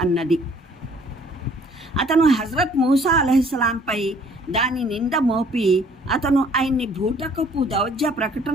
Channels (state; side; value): normal; both; correlation 0.58